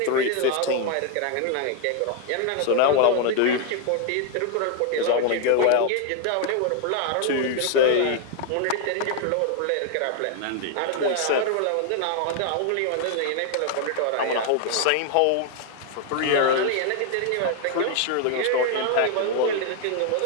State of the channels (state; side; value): different; both; correlation 0.01